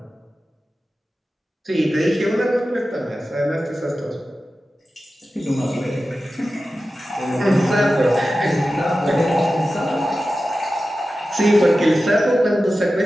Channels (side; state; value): both; normal; correlation 0.94